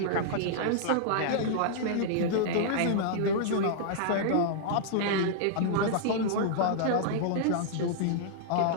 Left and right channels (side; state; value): both; different; correlation -0.01